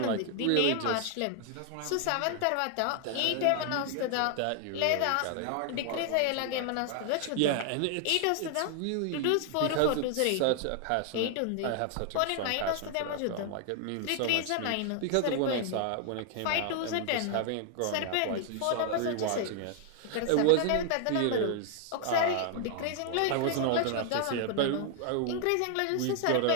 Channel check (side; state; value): both; different; correlation 0.00